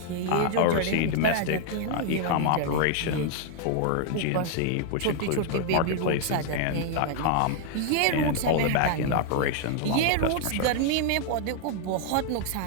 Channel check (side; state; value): both; different; correlation 0.00